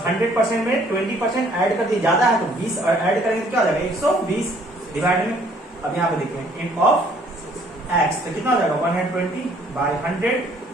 में 20% ऐड कर दिए, ज्यादा है तो 20 ऐड करेंगे तो क्या हो जाएगा 120 डिवाइड में। अब यहाँ पे देखिए इन ऑफ x, तो कितना हो जाएगा 120/100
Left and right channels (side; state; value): both; normal; correlation 0.61